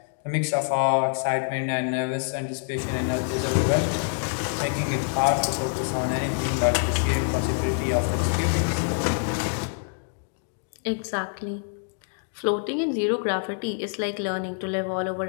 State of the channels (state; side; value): silent; right; digital silence